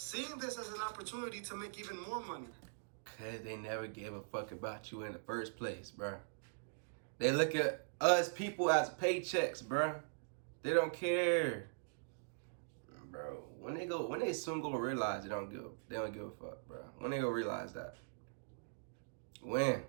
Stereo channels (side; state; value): left; silent; digital silence